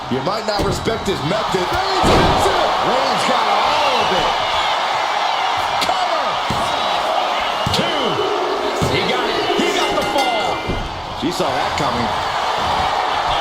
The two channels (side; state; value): both; identical; correlation 1.00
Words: You might not respect his method. Reigns hits it! Reigns got all of it. Cover! 2. He got it. He got the fall. She saw that coming.